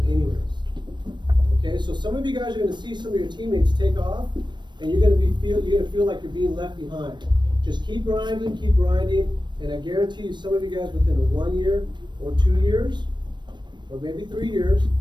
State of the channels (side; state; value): left; late; 0.22 ms